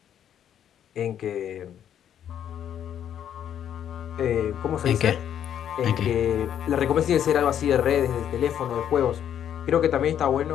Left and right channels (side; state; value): right; quieter; 9.7 dB